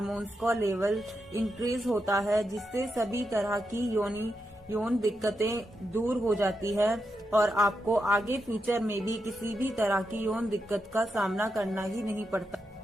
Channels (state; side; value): normal; both; correlation 0.86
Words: का लेवल इंक्रीज होता है, जिससे सभी तरह की यौन दिक्कतें दूर हो जाती है और आपको आगे फ्यूचर में भी किसी भी तरह की यौन दिक्कत का सामना करना ही नहीं पड़ता।